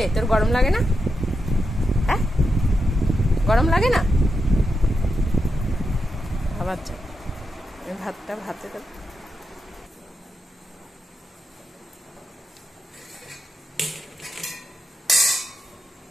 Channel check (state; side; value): normal; both; correlation 0.87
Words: তোর গরম লাগে না? হ্যাঁ গরম লাগে না? আবার যা ভাতটা ভাতে দেব।